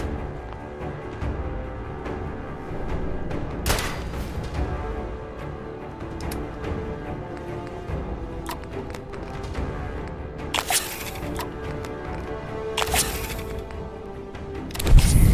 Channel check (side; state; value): both; identical; correlation 1.00